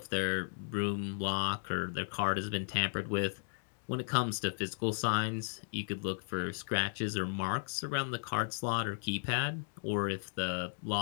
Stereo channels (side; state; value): right; silent; digital silence